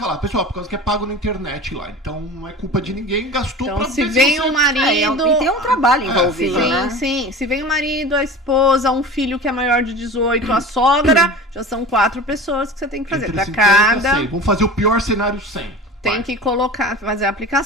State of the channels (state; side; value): normal; both; correlation 0.35